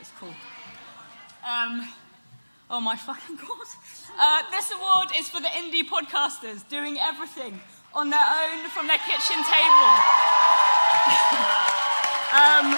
cool. Oh my fucking god. This award is for the indie podcasters doing everything on their own from their kitchen table.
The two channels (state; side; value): inverted; both; correlation -1.00